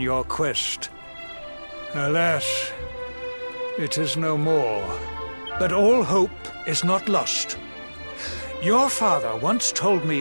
quest. Alas, it is no more. But all hope is not lost. Your father once told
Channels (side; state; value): both; inverted; correlation -1.00